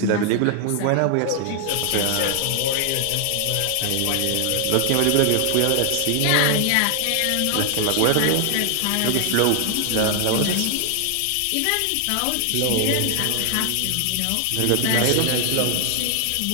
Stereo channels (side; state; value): both; different; correlation 0.00